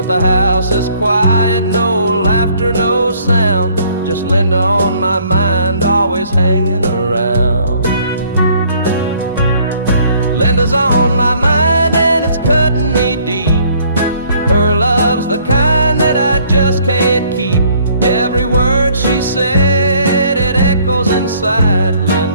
the house is quiet, no laughter, no sound. Just Linda on my mind, always hanging around. Linda's on my mind and it's cutting me deep. Her love's the kind that I just can't keep. Every word she said, it echoes inside.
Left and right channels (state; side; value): inverted; both; correlation -0.61